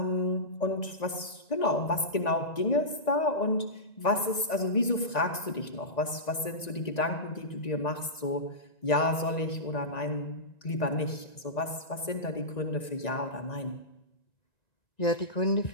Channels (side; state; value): right; late; 1.9 ms